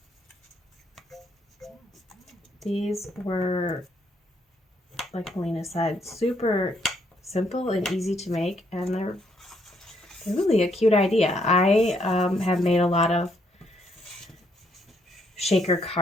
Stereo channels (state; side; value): normal; both; correlation 0.72